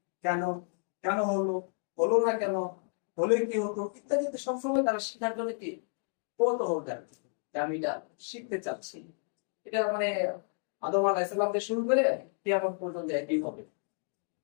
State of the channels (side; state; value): right; silent; 57 dB below the other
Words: কেন, কেন হলো, হলো না কেন, হলে কি হতো ইত্যাদি সবসময় তারা শিখার জন্য কি কৌতূহল থাকে যে আমি এটা শিখতে চাচ্ছি। এটা মানে আদম আলাইহিস সালাম থেকে শুরু করে কিয়ামত পর্যন্ত একই হবে।